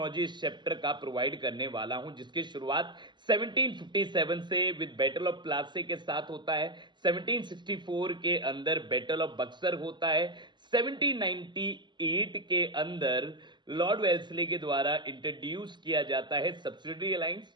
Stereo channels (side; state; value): left; late; 0.22 ms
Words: इस चैप्टर का प्रोवाइड करने वाला हूं, जिसकी शुरुआत 1757 से विद बैटल ऑफ प्लासी के साथ होता है। 1764 के अंदर बैटल ऑफ बक्सर होता है। 1798 के अंदर लॉर्ड वेल्सली के द्वारा इंट्रोड्यूस किया जाता है सब्सिडरी अलायंस।